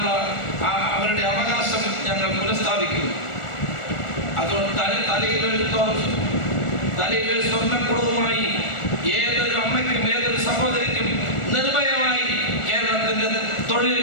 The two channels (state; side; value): late; right; 1.4 ms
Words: അവരുടെ അവകാശം ഞങ്ങൾ പുനഃസ്ഥാപിക്കുന്നു. അതുകൊണ്ട് തലയിൽ സ്വർണ്ണക്കുടവുമായി ഏതൊരു അമ്മയ്ക്കും ഏതൊരു സഹോദരിക്കും നിർഭയമായി കേരളത്തിന്റെ